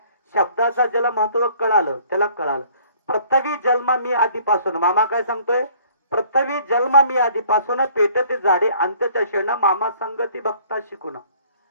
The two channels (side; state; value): both; inverted; correlation -0.57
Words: शब्दाचा ज्याला महत्व कळालं त्याला कळालं. पृथ्वी जन्म मी आधीपासून, मामा काय सांगतोय, पृथ्वी जन्म मी आधीपासून पेटत जाडे अंत्यदर्शना मामा संगती भक्त शिकून.